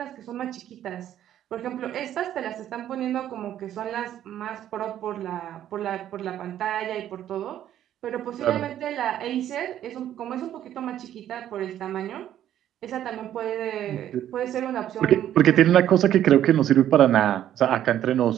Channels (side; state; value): left; quieter; 11.4 dB